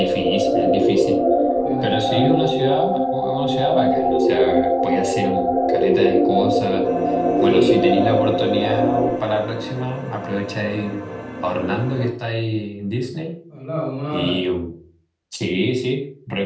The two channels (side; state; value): both; identical; correlation 1.00